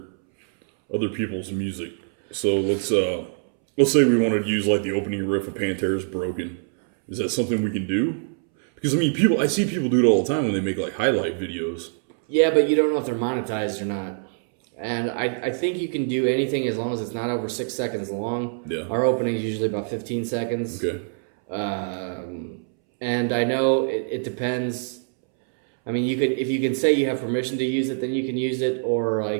people's music? So let's say we wanted to use like the opening riff of Pantera's Broken. Is that something we can do? Because I see people do it all the time when they make like highlight videos. Yeah, but you don't know if they're monetized or not. And I think you can do anything as long as it's not over 6 seconds long. Yeah. Our opening is usually about 15 seconds. Okay. And I know it depends. I mean, if you can say you have permission to use it, then you can use it. Or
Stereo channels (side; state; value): left; silent; 63 dB below the other